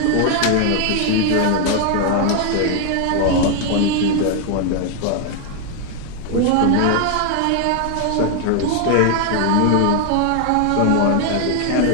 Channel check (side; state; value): both; different; correlation 0.00